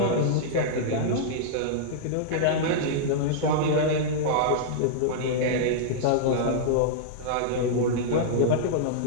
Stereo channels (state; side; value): different; both; correlation -0.02